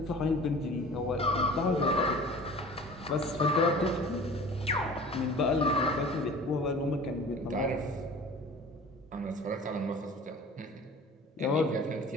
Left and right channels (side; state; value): both; normal; correlation 0.42